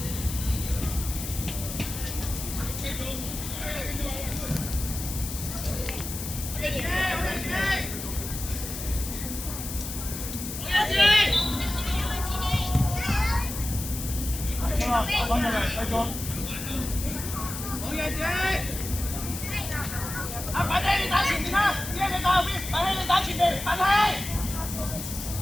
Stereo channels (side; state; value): left; noise; hiss, 7 dB below the sound